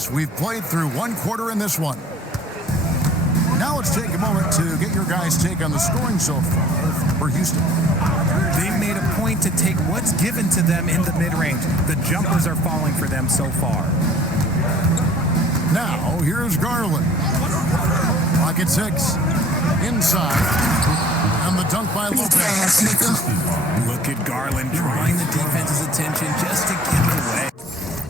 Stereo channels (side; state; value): both; normal; correlation 0.53